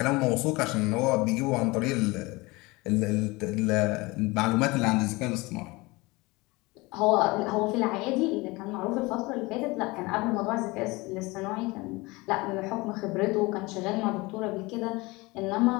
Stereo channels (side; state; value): right; quieter; 23.4 dB